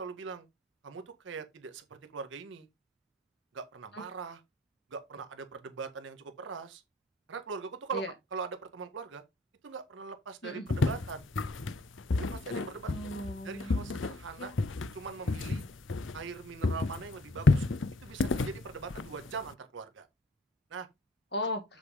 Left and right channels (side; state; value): both; normal; correlation 0.58